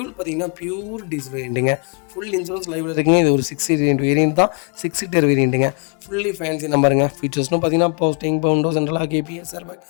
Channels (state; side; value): quieter; right; 39.3 dB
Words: பார்த்தீங்கன்னா பியூர் டீசல் வேரியண்ட்டுங்க. ஃபுல் இன்சூரன்ஸ் லைவில் இருக்குங்க. இது ஒரு 6 சீட்டர் வேரியண்ட் தான். 6 சீட்டர் வேரியண்ட்டுங்க. ஃபுல்லி ஃபேன்சி நம்பருங்க. ஃபீச்சர்ஸ்னு பார்த்தீங்கன்னா power steering, power window, central lock, கேபிஎஸ், airbag,